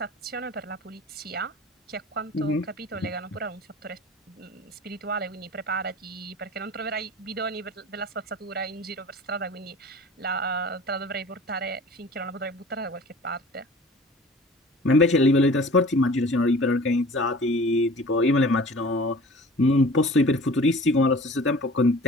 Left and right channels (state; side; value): normal; both; correlation 0.43